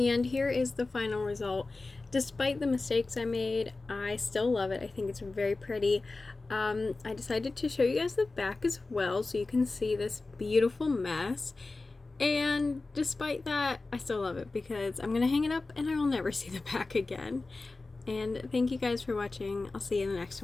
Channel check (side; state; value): right; quieter; 3.5 dB